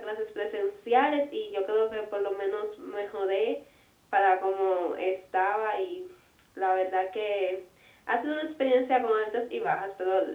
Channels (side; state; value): both; identical; correlation 1.00